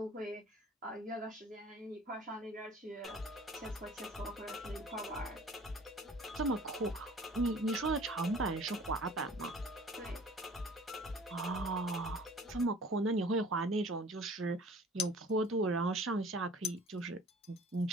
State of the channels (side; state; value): both; normal; correlation 0.48